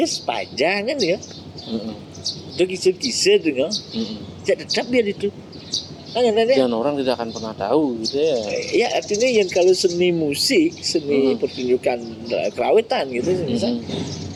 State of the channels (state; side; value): identical; both; correlation 1.00